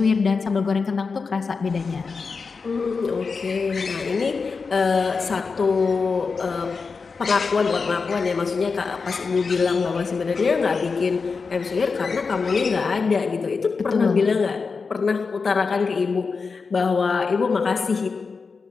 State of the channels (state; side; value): quieter; right; 4.8 dB